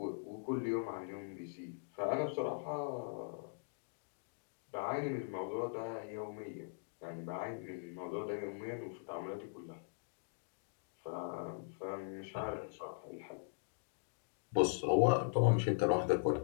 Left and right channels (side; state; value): right; silent; digital silence